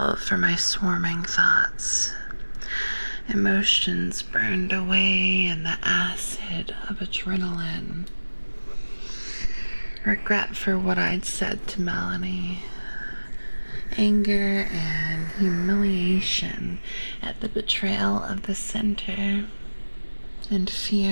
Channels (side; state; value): both; inverted; correlation -1.00